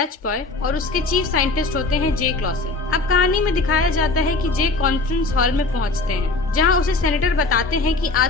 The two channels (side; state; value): right; quieter; 3.4 dB